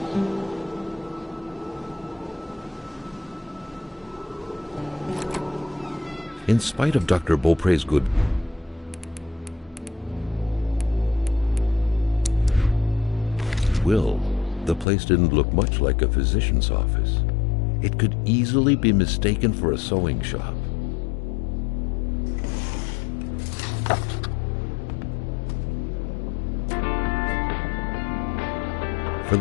In spite of Dr. Beaupre's good will, the place didn't look much like a physician's office. It could easily be mistaken for a sewing shop. For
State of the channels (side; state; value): right; drops out; at 14.9 s